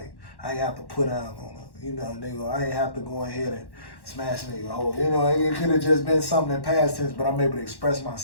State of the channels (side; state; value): right; late; 1.1 ms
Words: I ain't have to put down on a, nigga. I ain't have to go ahead and smash nigga hole. It could have just been something in past tense, but I'm able to express